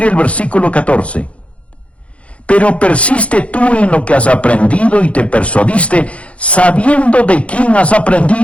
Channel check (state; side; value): late; right; 0.062 ms